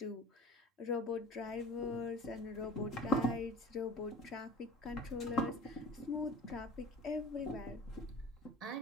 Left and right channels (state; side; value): normal; both; correlation 0.42